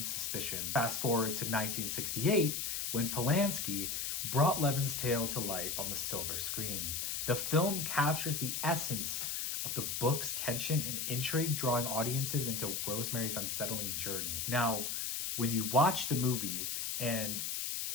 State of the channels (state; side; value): noise; left; hiss, 2 dB below the sound